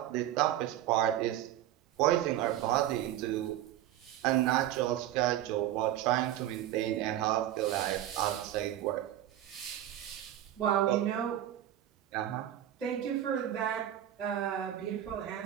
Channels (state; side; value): quieter; left; 12.4 dB